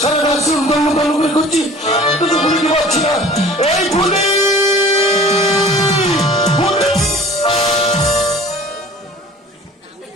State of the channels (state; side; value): normal; both; correlation 0.45